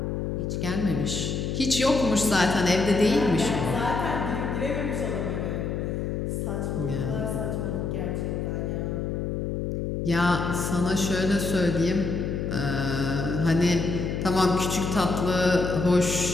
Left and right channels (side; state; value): left; noise; hum, 2 dB below the sound